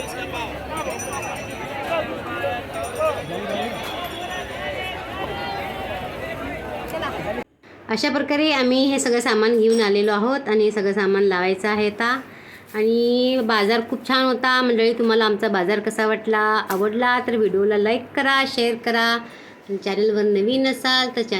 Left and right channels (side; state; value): both; identical; correlation 1.00